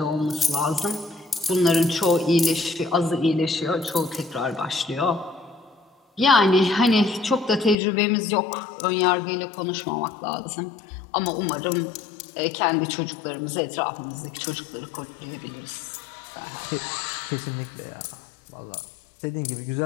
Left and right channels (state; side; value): drops out; right; at 7.8 s